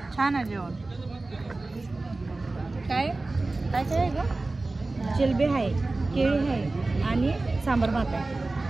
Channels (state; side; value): quieter; left; 3.2 dB